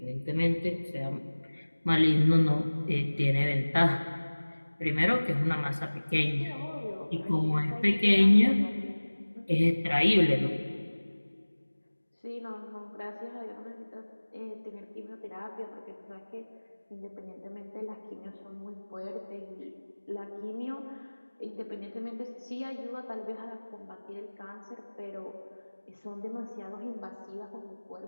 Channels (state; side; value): inverted; both; correlation -1.00